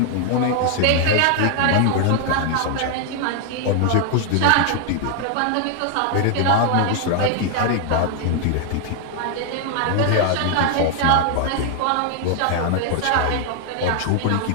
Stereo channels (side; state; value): both; different; correlation 0.00